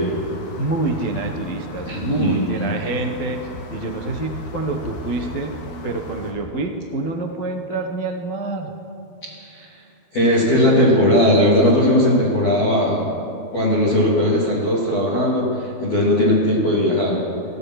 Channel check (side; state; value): right; late; 12 ms